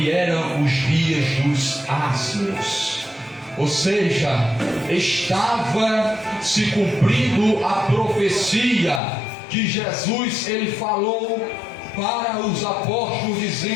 eram os dias dos asnos. Ou seja, estava se cumprindo a profecia que Jesus ele falou para os apóstolos,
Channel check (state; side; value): drops out; right; at 9.0 s